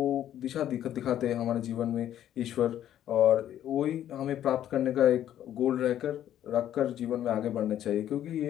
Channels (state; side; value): quieter; right; 11.4 dB